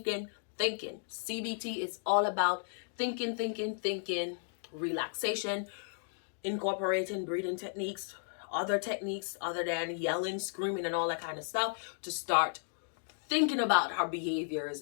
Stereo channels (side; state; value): right; silent; digital silence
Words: is all about thinking, relaxation, incorporating breathing techniques, other techniques other than yelling, screaming, and all that kind of stuff to start thinking about our behaviors